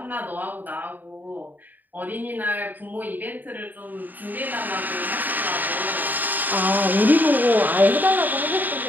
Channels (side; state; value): left; late; 0.087 ms